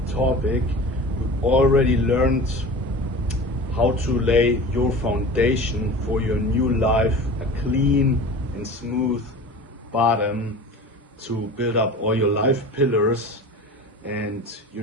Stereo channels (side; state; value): both; normal; correlation 0.36